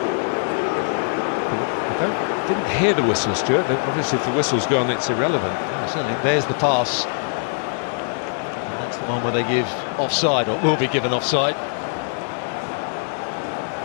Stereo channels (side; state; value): right; silent; 64 dB below the other